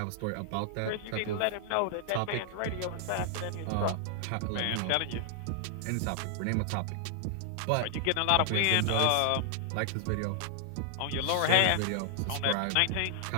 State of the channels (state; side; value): different; both; correlation 0.00